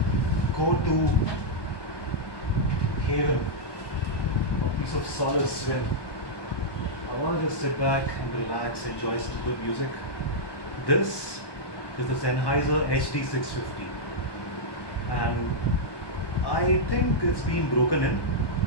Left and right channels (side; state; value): right; late; 1.2 ms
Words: go-to haven, a piece of solace when I want to just sit back and relax, enjoy some good music. This is the Sennheiser HD650, and I think it's been broken in.